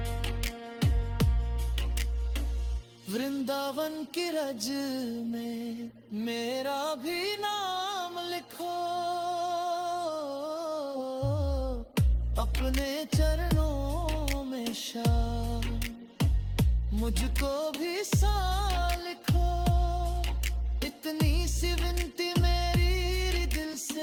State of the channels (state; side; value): identical; both; correlation 1.00